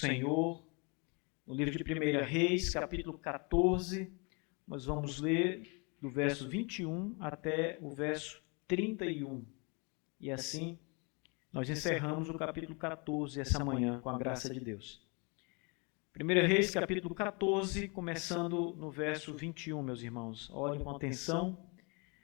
no livro de 1 Reis, capítulo 14. Nós vamos ler do verso 21 até o verso 31. E assim nós encerramos o capítulo 14 essa manhã, com a graça de Deus. 1 Reis, capítulo 14, começando no verso 21, meus irmãos. Olhem com atenção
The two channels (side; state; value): right; quieter; 32.0 dB